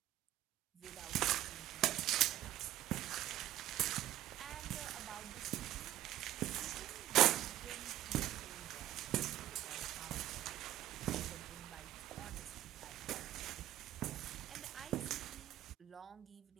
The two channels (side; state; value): left; quieter; 13.5 dB